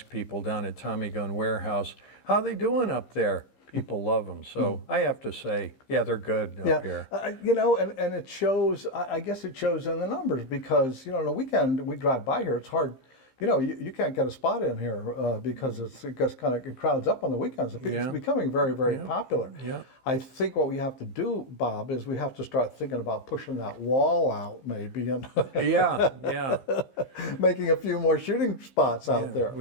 people down at Tommy Gun Warehouse, how they doing up there? People love them. So I have to say, yeah, they're good up here. You know, and it shows, I guess it shows in the numbers, because, you know, on the weekend we drive by here, it's hard you know, you can't get a spot in here because it just kind of crowds up on the weekends. It's Yeah. becoming very, very popular. Yeah. I think what we have to do, Bob, is we have to start thinking about pushing that wall out maybe and Yeah. making a few more shooting spots out there.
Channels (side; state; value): right; late; 15 ms